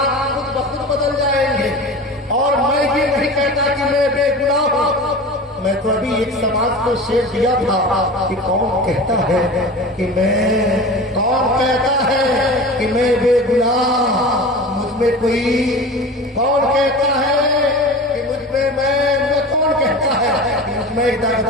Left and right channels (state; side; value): normal; both; correlation 0.34